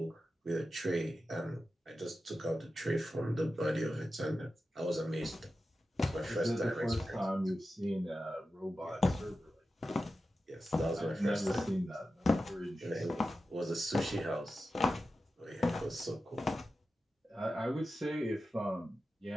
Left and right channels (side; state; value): both; normal; correlation 0.92